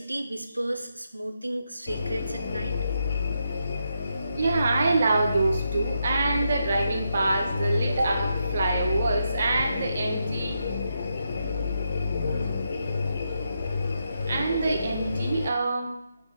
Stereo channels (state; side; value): inverted; both; correlation -0.82